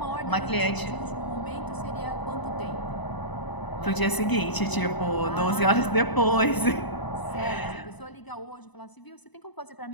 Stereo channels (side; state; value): right; late; 1.0 ms